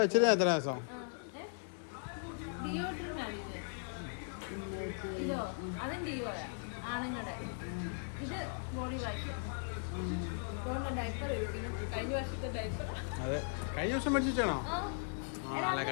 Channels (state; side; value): silent; right; digital silence